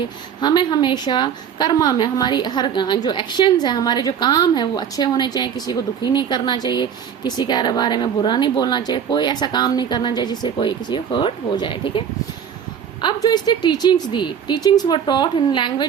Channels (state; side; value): quieter; left; 8.1 dB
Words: हमें हमेशा कर्मा में, हमारी हर जो एक्शंस है, हमारे जो काम है वो अच्छे होने चाहिए. किसी को दुखी नहीं करना चाहिए, किसी के बारे में बुरा नहीं बोलना चाहिए, कोई ऐसा काम नहीं करना चाहिए जिससे कोई किसी को हर्ट हो जाए. ठीक है. अब जो इसने teachings the, teachings were taught in